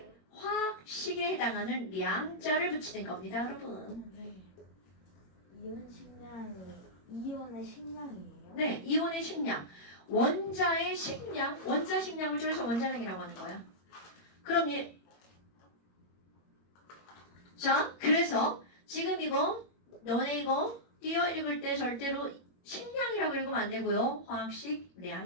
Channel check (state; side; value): late; right; 21 ms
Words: 화학식에 해당하는 량자를 붙이는 겁니다, 여러분. 이온 식량이 이온의 식량이에요? 네, 이온의 식량. 원자의 식량, 원자 식량을 줄여서 원자량이라고 하는 거야. 그럼 자, 그래서 지금 너네 이거 띄어 읽을 때 절대로 식량이라고 읽으면 안 되고요.